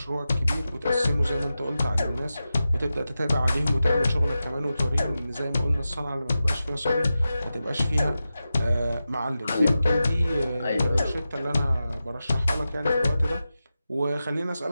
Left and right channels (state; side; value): inverted; both; correlation -0.92